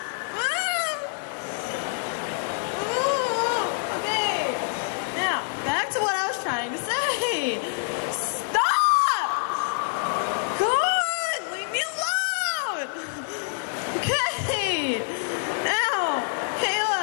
Okay, now, back to what I was trying to say. Stop! God, leave me alone! Okay, now,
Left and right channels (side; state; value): right; silent; digital silence